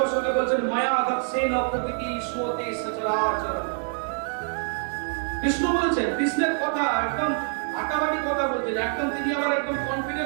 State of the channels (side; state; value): left; silent; 56 dB below the other